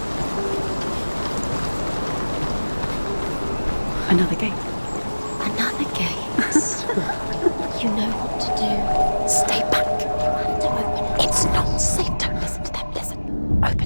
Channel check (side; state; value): both; inverted; correlation -1.00